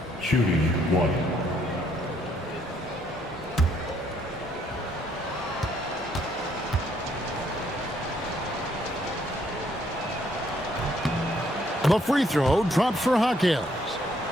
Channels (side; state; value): both; normal; correlation 0.69